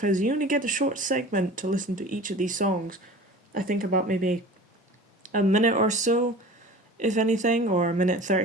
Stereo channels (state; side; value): normal; both; correlation 0.39